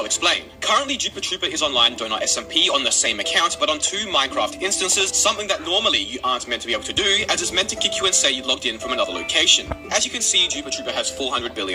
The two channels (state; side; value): identical; both; correlation 1.00